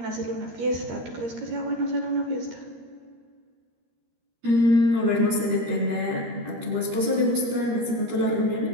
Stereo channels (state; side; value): late; left; 13 ms